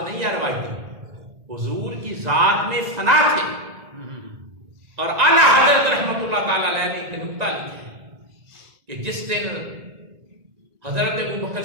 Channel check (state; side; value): late; left; 2.0 ms